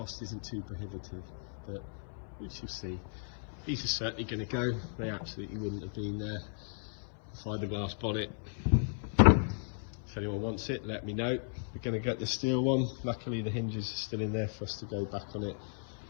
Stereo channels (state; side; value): silent; right; 54 dB below the other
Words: isn't too prohibitive, but we shall see. These are certainly going to go, they absolutely wouldn't have been there inside the glass bonnet. If anyone wants it, let me know. We're going to get the steel one. Luckily the hinges are still in there for us to go back on it.